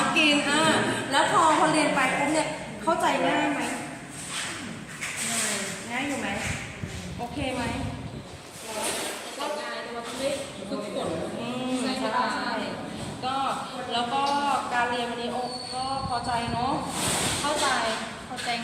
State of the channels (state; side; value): identical; both; correlation 1.00